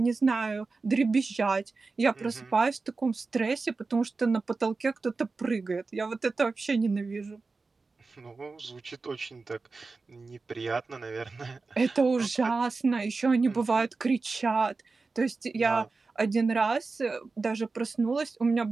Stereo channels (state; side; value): quieter; left; 4.0 dB